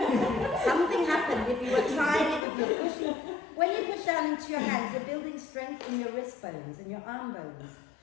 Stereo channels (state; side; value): drops out; right; at 2.5 s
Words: Something happened if you were trying it, if you're pushing. When you push down into your hands, you're building strength in your wrist bones and your arm bones.